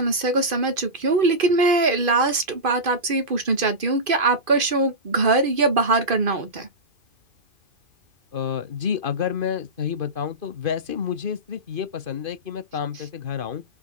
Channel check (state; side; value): late; left; 2.5 ms